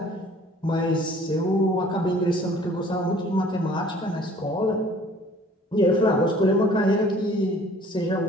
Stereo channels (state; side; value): normal; both; correlation 0.53